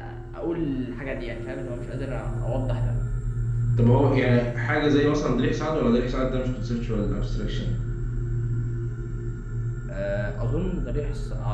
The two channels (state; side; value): identical; both; correlation 1.00